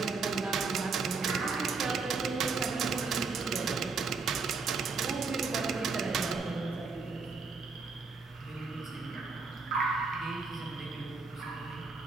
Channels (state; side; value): quieter; left; 4.5 dB